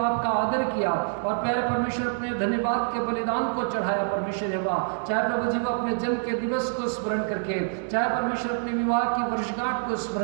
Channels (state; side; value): silent; left; digital silence